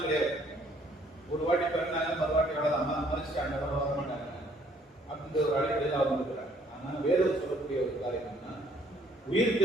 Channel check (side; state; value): both; normal; correlation 0.63